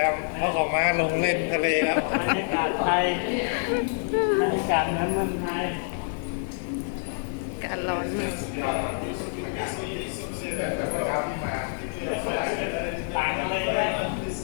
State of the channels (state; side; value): silent; right; 60 dB below the other